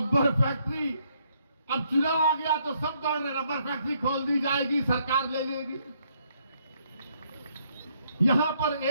फैक्ट्री, अब चुनाव आ गया तो सब दौड़ रहे, रबर फैक्ट्री खोल दी जाएगी, सरकार ले लेगी। यहां पर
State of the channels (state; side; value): inverted; both; correlation -0.71